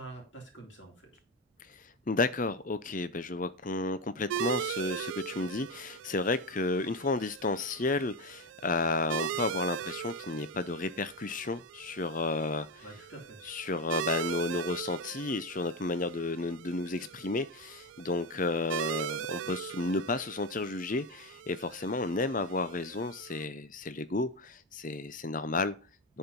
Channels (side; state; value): both; normal; correlation 0.15